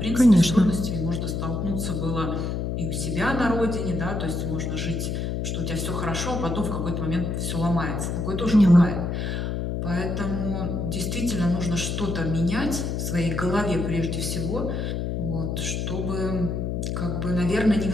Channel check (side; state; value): left; noise; hum, 2 dB below the sound